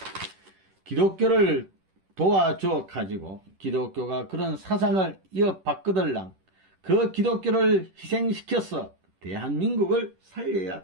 기독교를 도와줘 가지고 기독교가 그런 사상을 이어받거들랑 그 기독교를 희생시켜서 대한민국을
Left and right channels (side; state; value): left; late; 10 ms